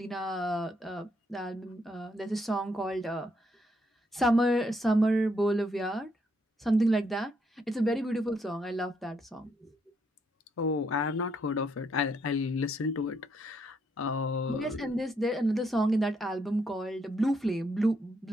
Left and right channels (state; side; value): normal; both; correlation 0.75